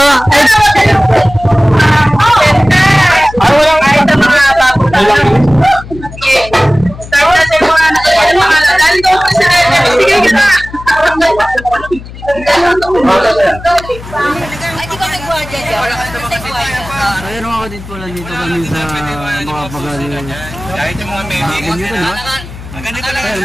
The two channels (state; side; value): noise; left; hum, 15 dB below the sound